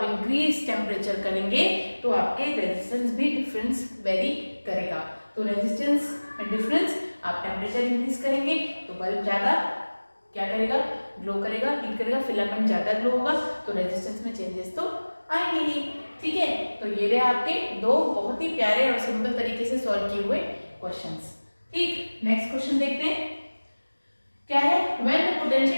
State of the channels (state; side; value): inverted; both; correlation -1.00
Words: इंक्रीज टेम्परेचर करेंगे तो आपके रेजिस्टेंस भी डिफरेंस वेरी करेगा। तो रेजिस्टेंस में डिफरेंस, आप टेम्परेचर इंक्रीज करेंगे तो बल्ब ज्यादा क्या करेगा, ग्लो करेगा, हीट करेगा, फिलामेंट ज्यादा ग्लो होगा, तो रेजिस्टेंस में चेंजेस तो आएंगे ही। ठीक है, तो ये रहे आपके दो बहुत ही प्यारे और सिंपल तरीके से सॉल्व किए हुए क्वेश्चंस। ठीक, नेक्स्ट क्वेश्चन देखते हैं क्या है। When the